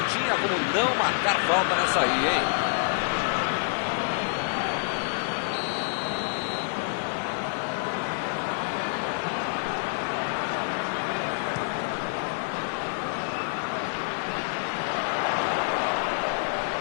tinha como não marcar falta nessa aí, hein?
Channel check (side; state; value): right; silent; digital silence